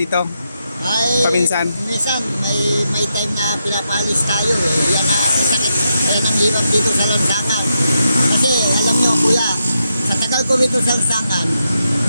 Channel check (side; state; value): both; inverted; correlation -0.84